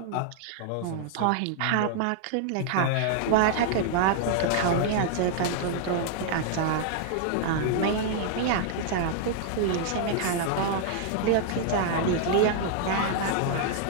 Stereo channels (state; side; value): different; both; correlation -0.01